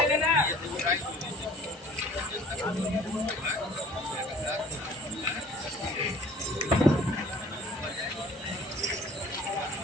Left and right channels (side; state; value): both; normal; correlation 0.49